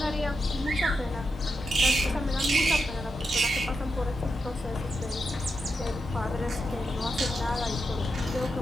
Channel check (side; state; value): both; normal; correlation 0.86